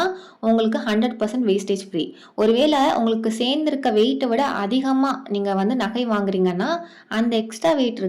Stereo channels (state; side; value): identical; both; correlation 1.00